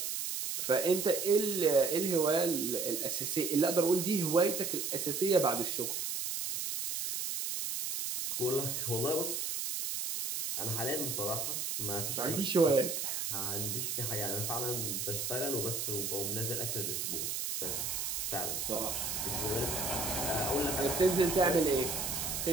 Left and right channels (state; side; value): noise; right; hiss, 2 dB below the sound